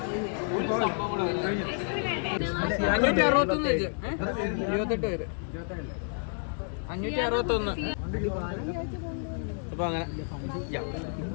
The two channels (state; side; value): silent; right; 58 dB below the other